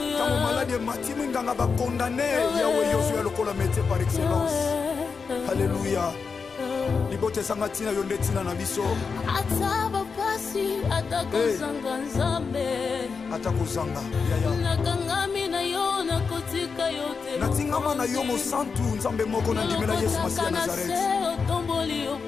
ntango maladi emati minganga bakondane yawe yozwa lokola métier par excellence alléluia libote ezanga ntina yo nde ntina na biso ata bapasi atakozanga nzambe atakozanga yaya nakangami na yo nakotika yo te natingama na yo mosantu nzambe moko nandimela Yesu Masiya Nazareth otomboli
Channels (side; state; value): right; quieter; 5.3 dB